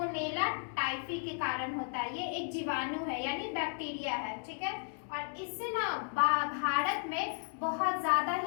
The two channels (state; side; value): silent; right; 55 dB below the other